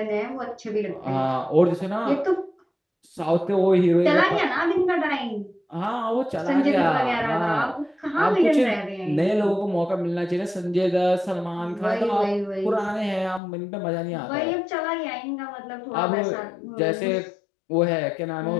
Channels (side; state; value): right; drops out; at 13.4 s